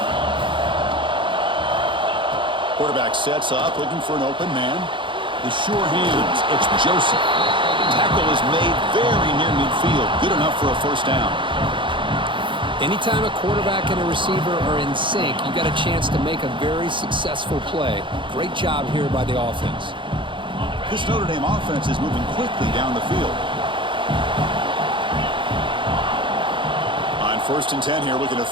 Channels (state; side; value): late; left; 0.24 ms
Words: Quarterback sets up, looking for an open man. The sure hands, it's Joseph. Tackle is made very near midfield. Good enough for a first down. Anytime a quarterback and a receiver are in sync, you got a chance to make a very successful play. Great job here by the offense. This Notre Dame offense is moving quickly down the field. On 1st and 10 here, looking to